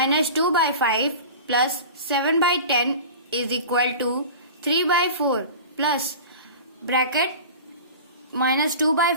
2 by 5 plus 7 by 10 is equal to 3 by 4 plus bracket minus 2 by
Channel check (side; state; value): both; inverted; correlation -0.35